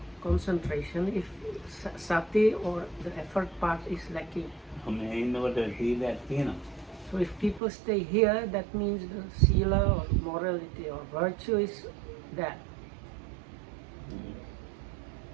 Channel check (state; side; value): drops out; left; at 7.6 s